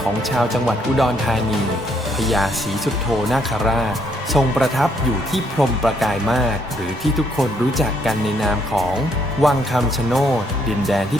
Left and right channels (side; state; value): both; normal; correlation 0.70